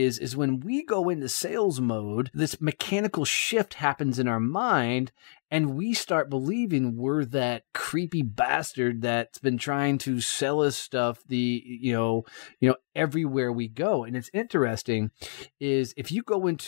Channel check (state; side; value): silent; right; digital silence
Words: when we go into sales mode, this mechanical shift happens in our mind, and we start believing we're that creepy bastard that's been trying to sell us stuff everywhere we go. And it's interesting is if you go